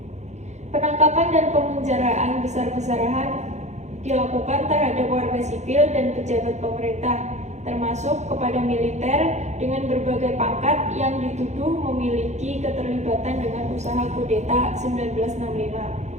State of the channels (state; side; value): late; left; 0.33 ms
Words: Penangkapan dan pemenjaraan besar-besaran dilakukan terhadap warga sipil dan pejabat pemerintah, termasuk kepada militer dengan berbagai pangkat yang dituduh memiliki keterlibatan dengan usaha kudeta 1965.